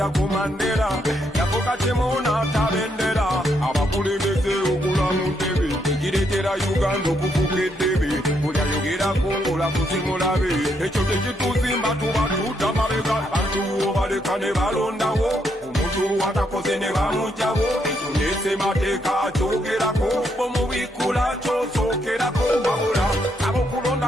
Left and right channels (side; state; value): both; normal; correlation 0.76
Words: ku Mandela yafuka temunaata bendera abakulembeze okula mu ntebe ekireetera Uganda okufuka eddebe buli ayogerako ng'olakusimulabe ekyo tekituzimba tuba tuta mabega abantu obaleka ne balondawo omuntu atakoze ne bamugjawo ekyo nesemateeka akyogerako bomubikula kyosookerako wabula